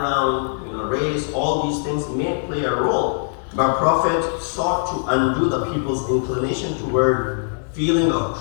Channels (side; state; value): right; silent; 65 dB below the other